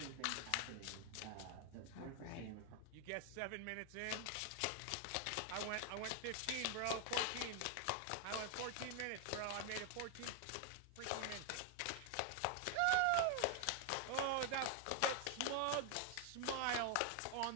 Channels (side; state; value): both; different; correlation 0.00